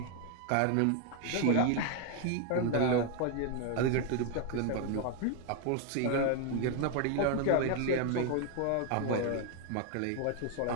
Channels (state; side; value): different; both; correlation 0.00